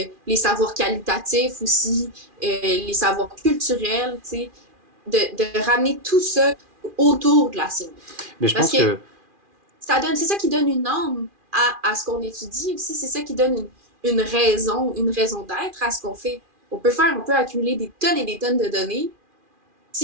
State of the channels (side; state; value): left; late; 2.4 ms